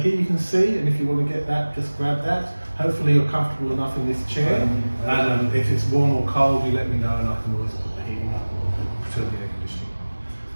you can see, and if you want to get that, just grab that. Hopefully you're comfortable enough in this chair, and if it's warm or cold, you let me know and I can always put the heating up or turn the air conditioning.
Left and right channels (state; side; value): inverted; both; correlation -1.00